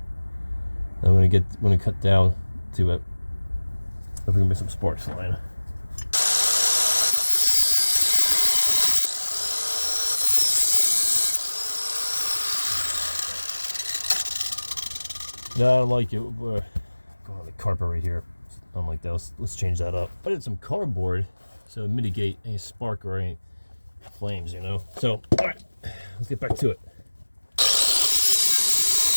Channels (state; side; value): inverted; both; correlation -1.00